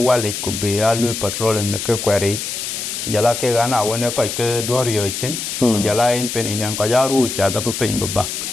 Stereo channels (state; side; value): noise; left; hiss, 5 dB below the sound